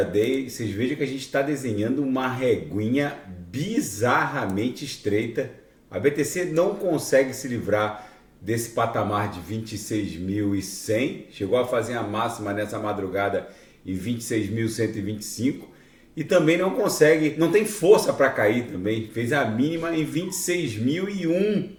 Vocês vejam que a gente está desenhando uma reguinha bizarramente estreita. A BTC não consegue se livrar desse patamar de 26.100, chegou a fazer a máxima nessa madrugada em 26.125 e também não consegue, não tem força para cair também, fez a mínima em 26.001.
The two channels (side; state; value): both; identical; correlation 1.00